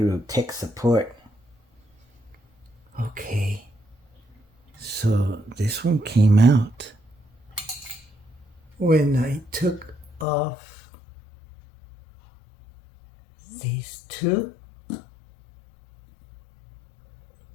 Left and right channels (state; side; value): drops out; right; at 10.2 s